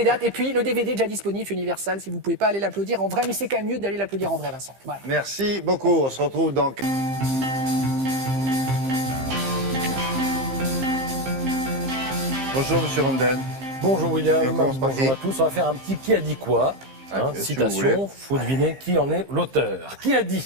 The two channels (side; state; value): left; late; 15 ms